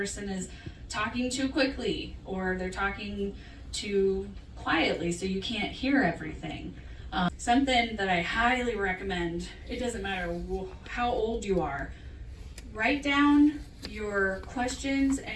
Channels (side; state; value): both; identical; correlation 1.00